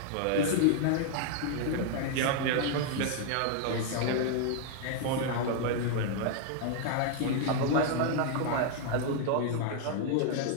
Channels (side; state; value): both; different; correlation 0.00